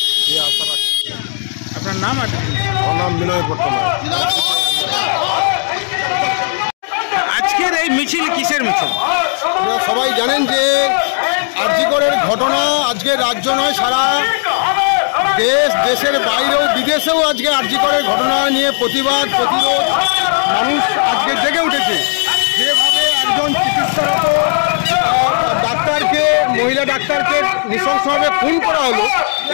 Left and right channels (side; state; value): right; silent; 70 dB below the other